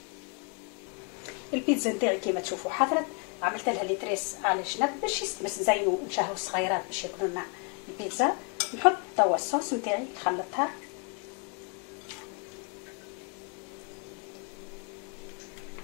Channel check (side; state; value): right; quieter; 34.4 dB